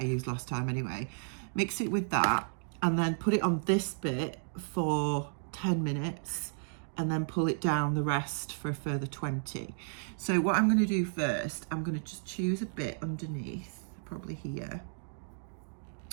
used last time anyway. Mix it with that and then put it on this bit for 10 minutes and then pull it down the rest for a further 20. So what I'm going to do first, I'm going to just choose a bit underneath, probably here,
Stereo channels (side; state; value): left; silent; digital silence